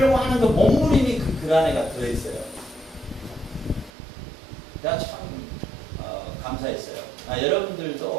하는 그 몸부림이 그 글 안에가 들어있어요. 제가 참 감사했어요.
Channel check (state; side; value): drops out; left; at 3.9 s